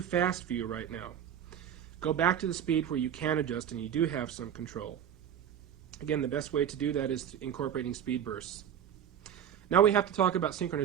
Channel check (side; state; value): left; quieter; 9.4 dB